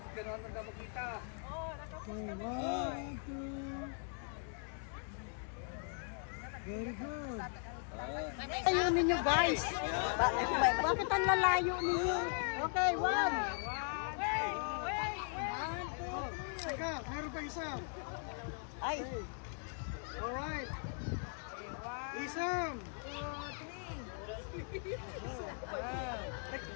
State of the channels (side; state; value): right; silent; 52 dB below the other